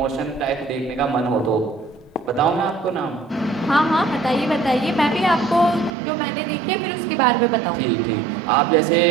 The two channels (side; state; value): left; drops out; at 6.0 s